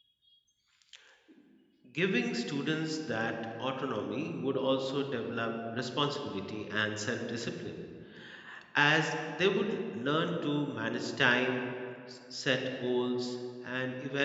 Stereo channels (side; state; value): both; identical; correlation 1.00